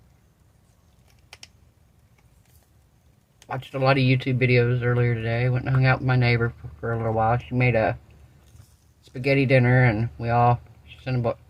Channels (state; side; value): identical; both; correlation 1.00